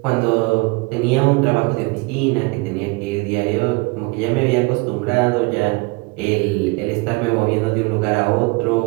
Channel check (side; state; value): left; quieter; 26.4 dB